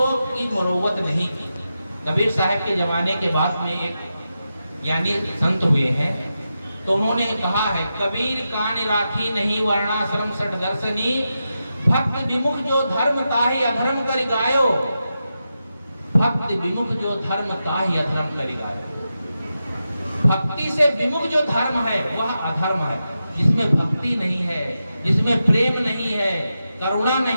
की मुरव्वत नहीं की। कबीर साहब के जमाने के बाद में एक ज्ञानी संत हुए हैं, तो उन्होंने कहा है, कबीर कान राखी नहीं वर्णाश्रम सठ दर्शनी, भक्त विमुख जो धर्म ताहि अधर्म कर गायो, भक्त विमुख जो धर्म ताहि अधर्म कर गायो। भक्ति से विमुख जो धर्म है वह अधर्म है। जिसमें भक्ति नहीं है, जिसमें प्रेम नहीं है, करुणा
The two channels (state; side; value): inverted; both; correlation -0.89